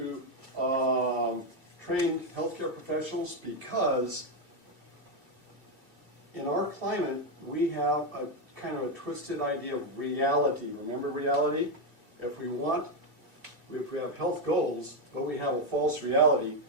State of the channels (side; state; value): left; late; 2.1 ms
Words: trained healthcare professionals because in our climate, we have a kind of a twisted idea of reality. Remember reality? If we have health goals, but we have a false reality,